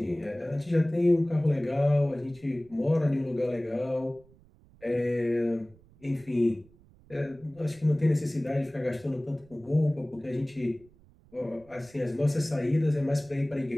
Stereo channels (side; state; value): right; noise; rumble, 27 dB below the sound